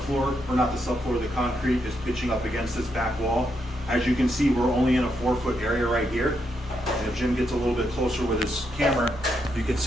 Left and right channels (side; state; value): both; normal; correlation 0.80